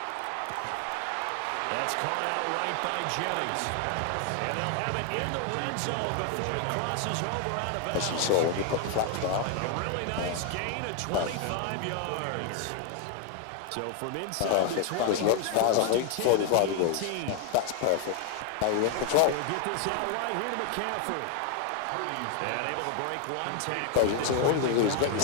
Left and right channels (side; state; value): both; different; correlation 0.00